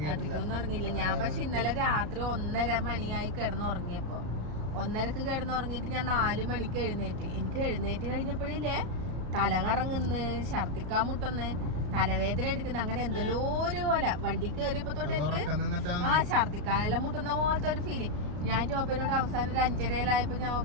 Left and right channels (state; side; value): late; left; 34 ms